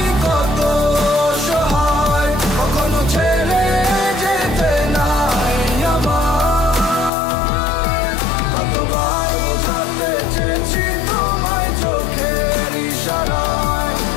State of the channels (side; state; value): right; drops out; at 7.1 s